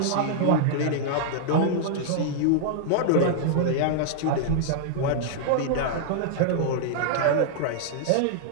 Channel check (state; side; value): different; both; correlation -0.01